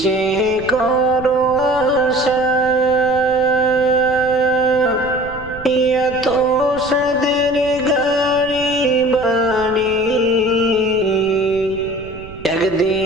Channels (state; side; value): noise; right; rumble, 17 dB below the sound